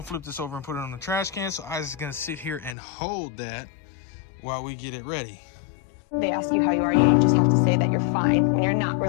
flip this over and put it on the trash can, so Isaac's gonna sit here and hold that while we get it ready. They ask you how you are, you just have to say that you're fine when you're not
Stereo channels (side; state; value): right; drops out; at 2.8 s